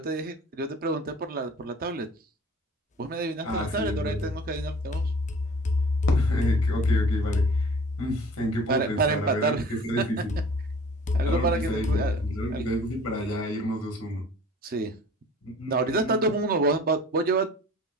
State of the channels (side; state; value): both; normal; correlation 0.46